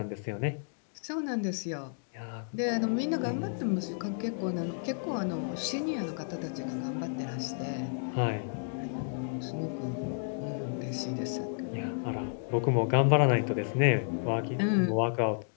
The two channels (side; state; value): right; silent; digital silence